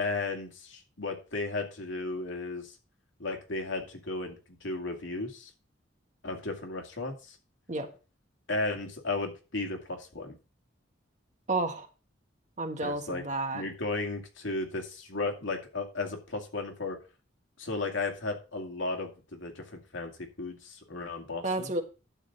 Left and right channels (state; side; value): normal; both; correlation -0.04